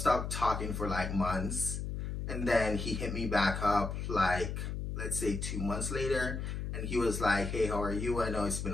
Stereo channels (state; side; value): noise; left; hum, 4 dB below the sound